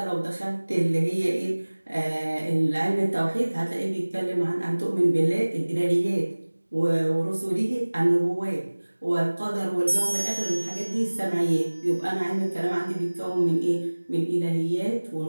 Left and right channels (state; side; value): inverted; both; correlation -1.00